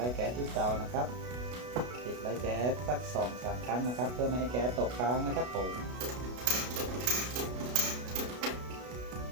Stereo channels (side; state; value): left; late; 33 ms